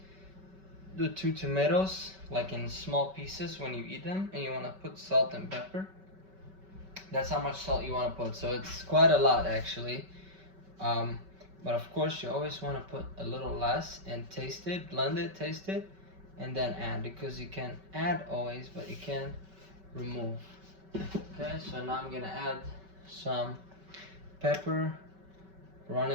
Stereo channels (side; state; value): left; late; 5.2 ms